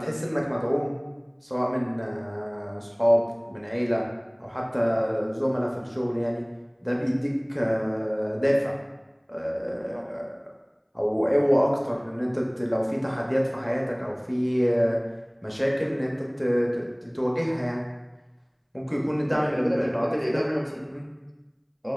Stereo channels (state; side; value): identical; both; correlation 1.00